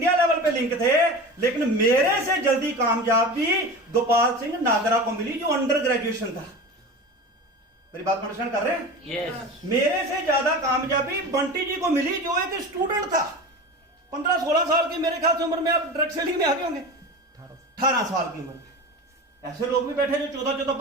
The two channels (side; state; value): both; normal; correlation 0.31